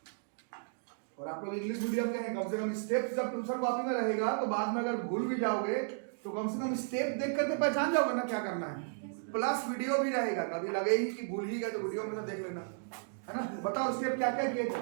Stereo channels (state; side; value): silent; left; digital silence